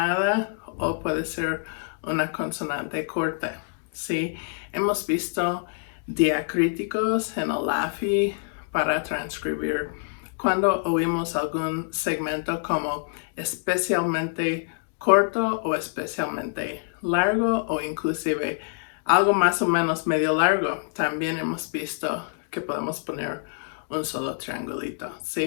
o puede ser una consonante corta. Sí, hemos visto diacríticos en el LAFI para transcribir cuando oímos algún segmento como especialmente corto o especialmente largo o inclusive algo más o menos medio largo. También hemos visto que podemos poner un solo triangulito,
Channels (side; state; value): right; silent; digital silence